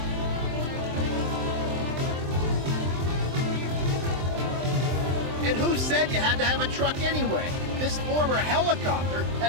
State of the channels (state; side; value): late; left; 23 ms